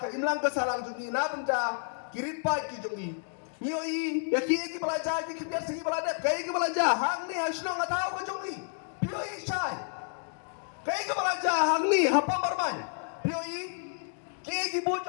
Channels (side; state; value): right; silent; 58 dB below the other